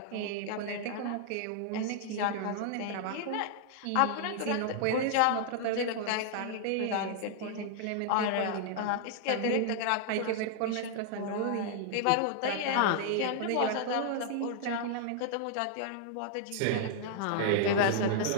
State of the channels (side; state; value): both; different; correlation 0.00